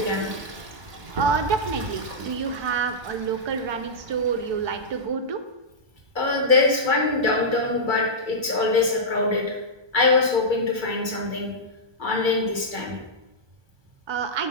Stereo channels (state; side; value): late; left; 1.2 ms